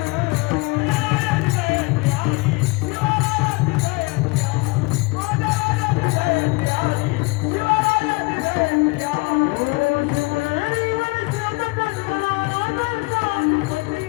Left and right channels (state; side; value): quieter; right; 25.5 dB